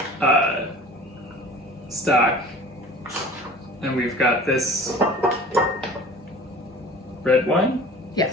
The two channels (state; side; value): normal; both; correlation 0.42